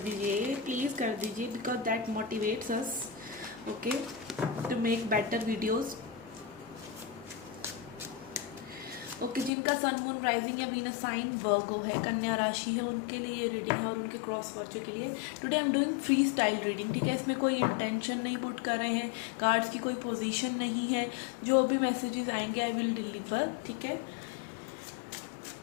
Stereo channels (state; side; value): drops out; right; at 9.5 s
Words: दीजिए, प्लीज़ कर दीजिए, because that motivates us okay to make better videos. Okay जिनका सन मून राइजिंग या वीनस साइन वर्गो है, कन्या राशि है, उनके लिए ये रीडिंग है और उनके क्रॉस वर्चू के लिए। Today I am doing free style reading. ठीक है, इसमें कोई इंटेंशन नहीं पुट कर रहे हैं, कार्ड्स की कोई पोजीशन नहीं है। जो भी मैसेजेस आएंगे आई विल डिलीवर। ठीक है,